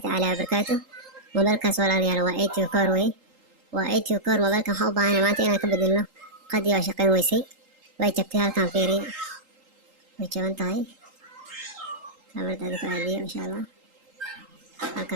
وبركاته. موبايلkaas walaalayaal waa ATO Core wey. waa ATO Core mobaylkan waxaan u baahanay maanta inaan ka bedelno qadii waa shaqayn weysay way jabtay halkan fiiriya way jaban tahay kamarada ku aadiyo insha Allah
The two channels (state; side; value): late; left; 3.8 ms